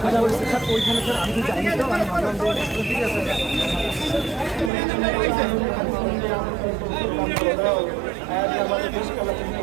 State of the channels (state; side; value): drops out; left; at 4.7 s